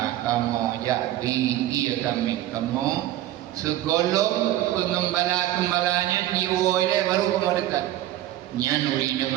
kamu jadi dia kami kamu segolong pengembala-gembalanya diwoi baru kamu dekat nyan urina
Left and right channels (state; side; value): quieter; left; 14.1 dB